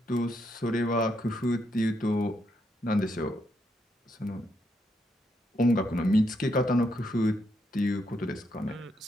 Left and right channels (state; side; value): normal; both; correlation 0.78